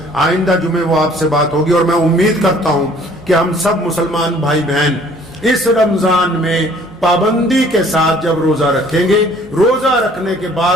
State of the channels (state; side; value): noise; left; hum, 24 dB below the sound